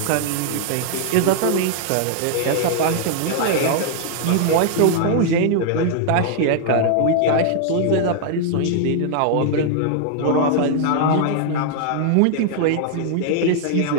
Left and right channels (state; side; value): different; both; correlation 0.00